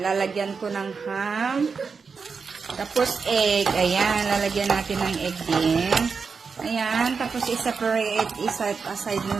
lalagyan ko ng ham. Tapos egg. Ayan, lalagyan natin ng egg din. Ayan, tapos i-separate, i-set aside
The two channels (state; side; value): quieter; left; 5.2 dB